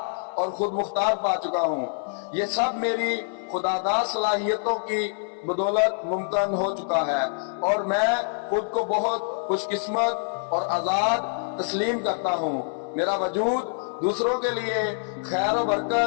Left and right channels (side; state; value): right; silent; 61 dB below the other